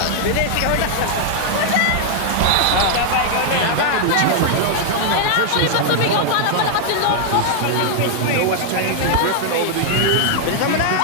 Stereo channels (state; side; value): different; both; correlation -0.01